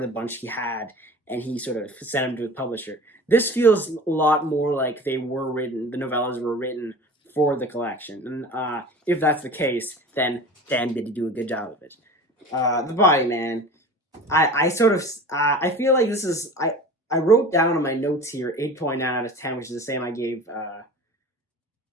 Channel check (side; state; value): both; normal; correlation 0.38